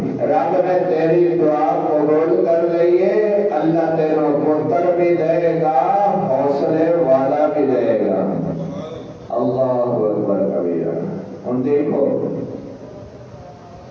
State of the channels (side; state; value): both; identical; correlation 1.00